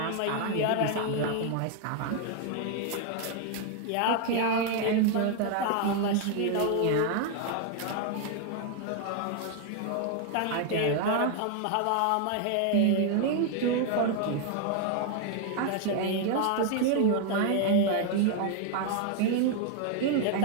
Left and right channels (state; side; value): different; both; correlation 0.00